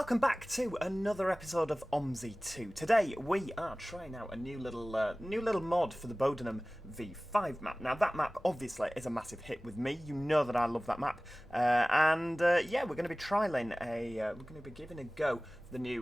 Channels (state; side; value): normal; both; correlation 0.98